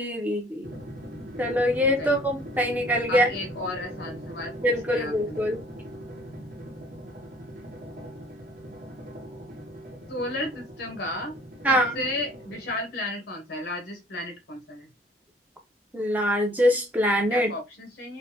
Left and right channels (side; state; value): both; normal; correlation 0.55